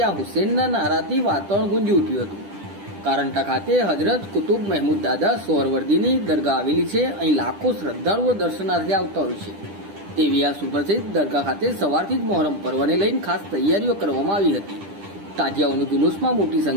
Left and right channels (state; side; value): late; left; 10 ms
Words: હુસેનના નારાથી વાતાવરણ ગુંજી ઉઠ્યું હતું. કારંટા ખાતે હજરત કુતુબ મહેમૂદ દાદા સોહરવર્દીની દરગાહ આવેલી છે. અહીં લાખો શ્રદ્ધાળુઓ દર્શનાર્થે આવતા હોય છે. તેવી આ સુપ્રસિદ્ધ દરગાહ ખાતે સવારથી જ મહોરમ પર્વને લઈને ખાસ તૈયારીઓ કરવામાં આવી હતી. તાજિયાઓનું જુલુસમાં મોટી